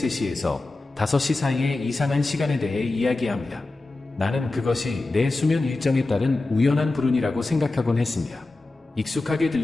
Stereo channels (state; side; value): quieter; right; 3.1 dB